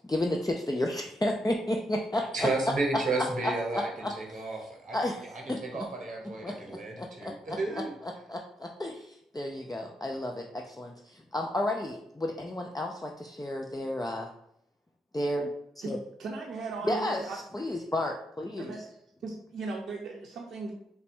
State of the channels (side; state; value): both; normal; correlation 0.80